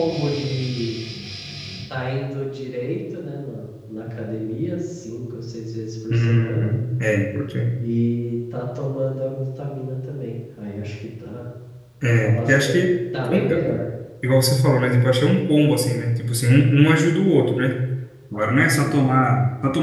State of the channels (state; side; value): identical; both; correlation 1.00